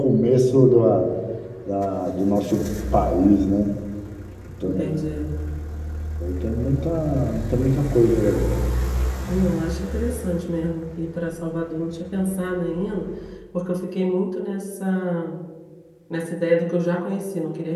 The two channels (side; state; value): both; identical; correlation 1.00